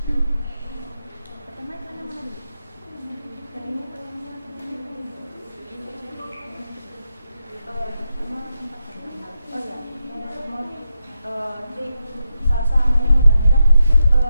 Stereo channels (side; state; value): both; inverted; correlation -0.86